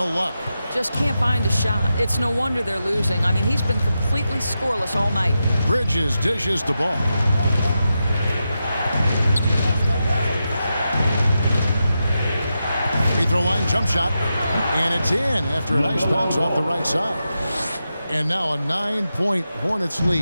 luck. Just can't find a shot. It's no wonder they're losing. I mean, he's been completely scoreless all night. Bridges dishes the ball. Free throw line jump shot. And it's in after a nice bounce off the right side. And now a 9-point Hornets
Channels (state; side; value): inverted; both; correlation -0.89